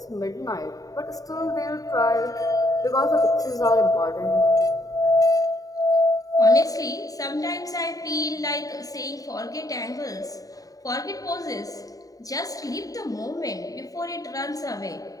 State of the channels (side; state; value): right; late; 0.17 ms